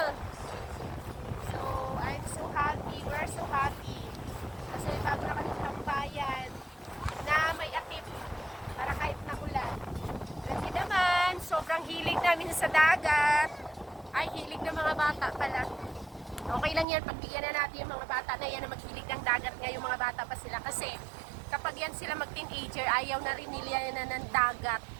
So, I'm so happy. We're so happy. Kasi bago na kami tambayan na may atip para kahit nakulan. Kasi naman, sobrang hilig namin sa dagat. Ay, hilig ng mga bata pala. Okay lang yan, pagbigyan na natin yung mga bata na yan na maghilig ng dagat nga yung mga bata pa sila. Kasi kapag yan sila mag-teenager, ayaw na rin nila na ng dagat.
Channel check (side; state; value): left; drops out; at 16.9 s